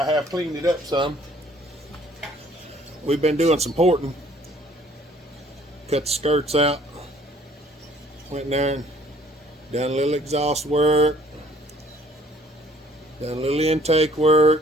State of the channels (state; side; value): normal; both; correlation 0.58